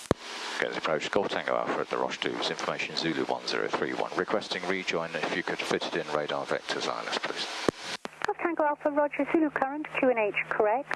Get the approach Golf Tango Alpha at the Roche 2's information Zulu 1031. Requesting rejoin if you could fit it in radar vectors, ILS, please. Golf Tango Alpha, Roger, Zulu current, QNH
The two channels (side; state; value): both; identical; correlation 1.00